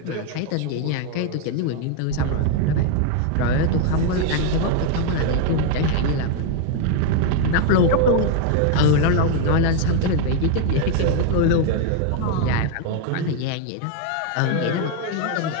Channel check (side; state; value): both; different; correlation 0.00